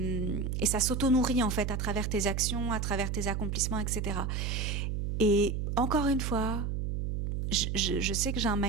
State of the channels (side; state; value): right; noise; hum, 2 dB below the sound